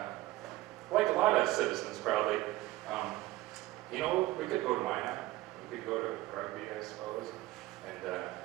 like a lot of citizens probably, we could go to Minot, we could go to rugby, I suppose,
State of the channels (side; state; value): left; quieter; 17.4 dB